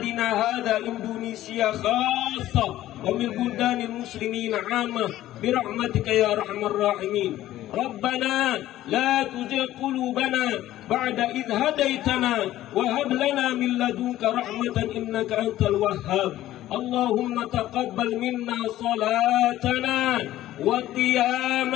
هذا إندونيسيا خاصة ومن بلدان المسلمين عامة برحمتك يا أرحم الراحمين. ربنا لا تزغ قلوبنا بعد إذ هديتنا وهب لنا من لدنك رحمة إنك أنت الوهاب اللهم تقبل منا صلاتنا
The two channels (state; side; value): quieter; right; 14.2 dB